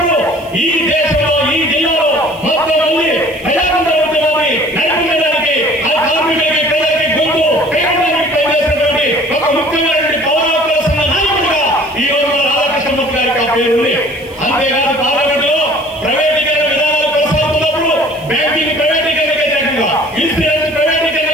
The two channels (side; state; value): right; noise; hiss, 25 dB below the sound